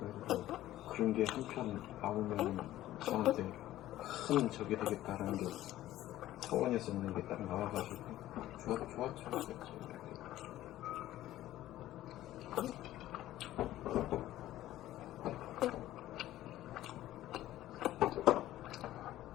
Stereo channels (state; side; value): quieter; right; 14.4 dB